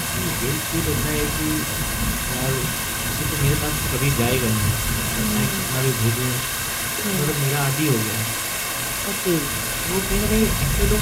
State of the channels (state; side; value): identical; both; correlation 1.00